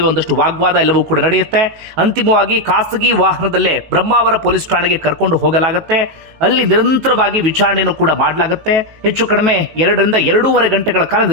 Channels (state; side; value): late; left; 19 ms